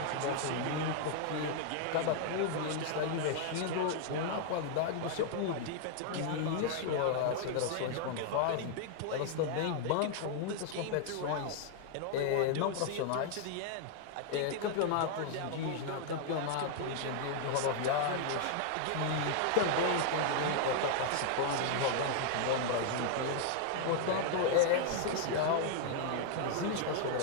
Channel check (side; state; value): both; different; correlation 0.00